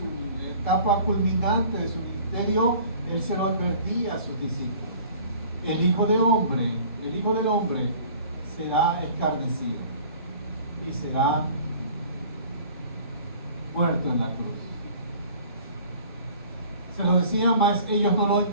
etapa culminante de su ministerio, él se lo advertía a sus discípulos. El Hijo del Hombre será escarnecido y será muerto en la cruz. Se lo decía, más ellos no lo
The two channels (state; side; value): inverted; both; correlation -0.48